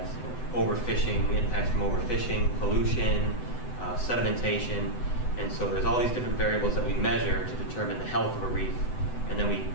overfishing, impacts from overfishing, pollution, sedimentation, and so there's all these different variables that we measure to determine the health of a reef, and then we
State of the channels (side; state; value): right; late; 7.9 ms